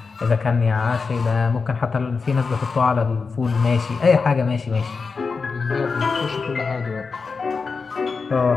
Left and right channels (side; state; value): right; quieter; 4.8 dB